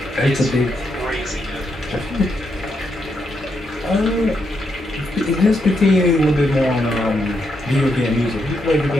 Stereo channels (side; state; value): both; normal; correlation 0.80